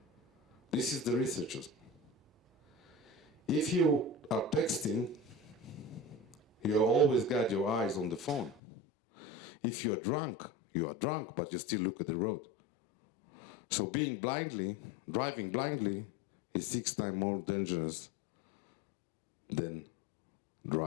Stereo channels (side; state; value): right; drops out; at 8.6 s